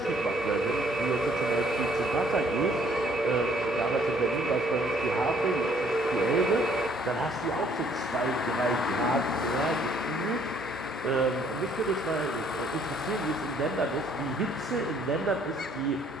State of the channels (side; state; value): both; normal; correlation 0.63